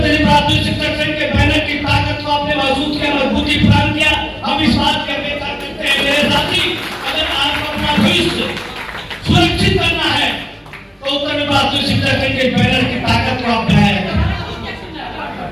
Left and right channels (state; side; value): identical; both; correlation 1.00